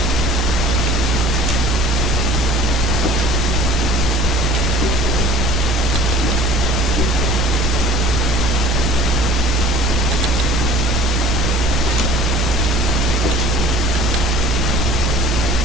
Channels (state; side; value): normal; both; correlation 0.47